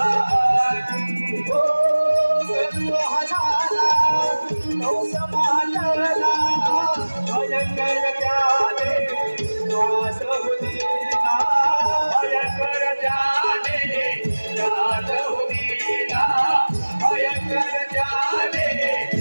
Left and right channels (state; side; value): inverted; both; correlation -1.00